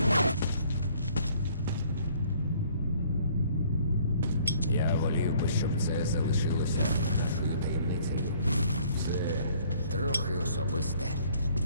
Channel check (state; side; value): inverted; both; correlation -0.59